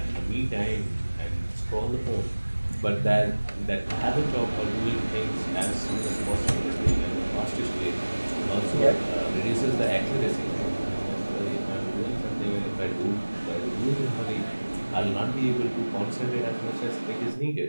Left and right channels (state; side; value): inverted; both; correlation -1.00